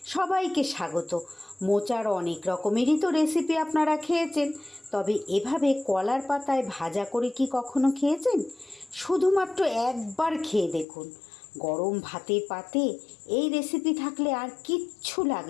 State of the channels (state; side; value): drops out; right; at 10.9 s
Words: সবাইকে স্বাগত। মোচার অনেক রকমেরই তো রেসিপি আপনারা খেয়েছেন, তবে এভাবে কলার পাতায় ভাজা করে কি কখনো খেয়েছেন? শুধুমাত্র একবার খেয়ে দেখুন। গরম ভাতের পাতে এই রেসিপি থাকলে আর কিচ্ছু